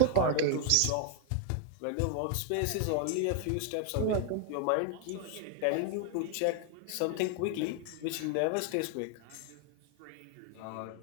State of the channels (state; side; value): different; both; correlation 0.00